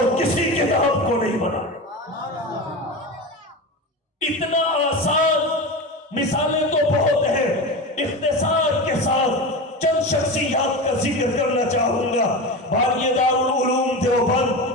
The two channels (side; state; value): both; normal; correlation 0.25